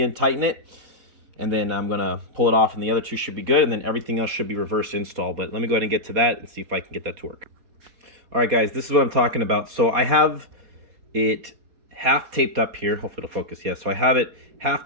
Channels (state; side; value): late; left; 4.2 ms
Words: tighten it, and then I'm going to pull it off, and the other two should be good, and then everything else should be reverse install. But let me go ahead and get to that and see if I can get that to work. All right, guys, this is what I'm talking about. So I have it half taped up here. Hopefully it'll focus. Yeah, so I have it half